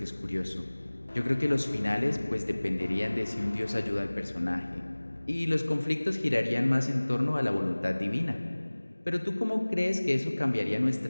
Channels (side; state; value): both; inverted; correlation -1.00